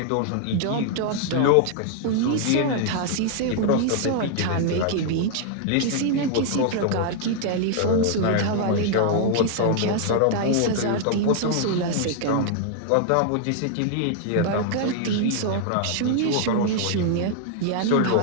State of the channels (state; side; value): different; both; correlation 0.00